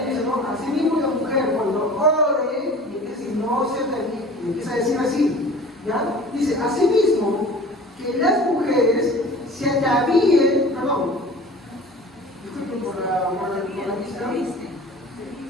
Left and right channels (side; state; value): both; normal; correlation 0.43